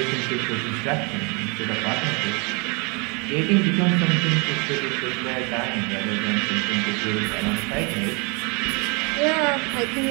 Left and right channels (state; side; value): quieter; left; 30.6 dB